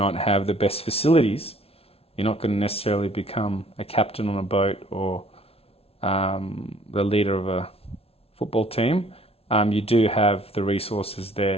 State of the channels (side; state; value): right; late; 0.29 ms